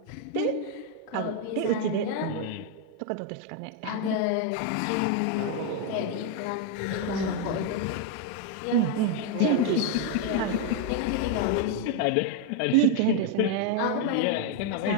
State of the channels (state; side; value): different; both; correlation 0.01